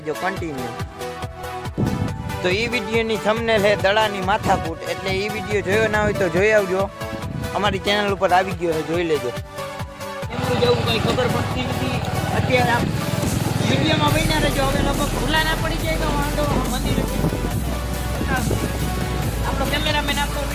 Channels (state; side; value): identical; both; correlation 1.00